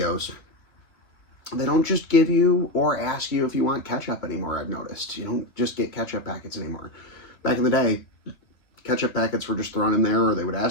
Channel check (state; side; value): late; right; 2.5 ms